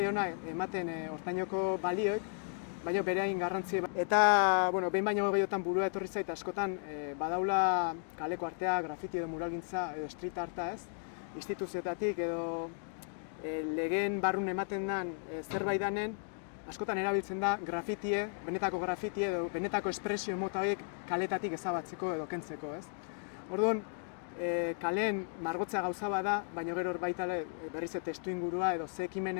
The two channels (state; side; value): silent; right; 55 dB below the other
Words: ematen hortainoko balioek, baina bere hain garrantzia. Eta, behin baino gehiotan burua etorri zait, askotan badaula kaleko artea, grafiti edo muralgintza edo street arta, instituzioetatik edo legeen barrun ematen den zerbait danen, askotan erabiltzen da grafitie, benetako grafitie edo benetako espresio mota horiek kaletatik ezabatzeko edo kentzeko, Orduan, kaleen margotzea gauza bada, baina gero baita berriz testu ingurua edo ze